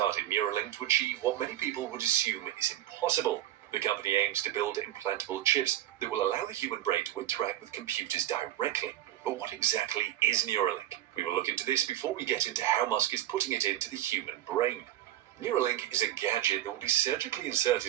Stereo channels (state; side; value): quieter; left; 13.2 dB